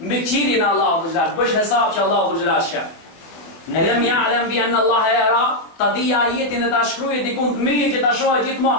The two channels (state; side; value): late; right; 24 ms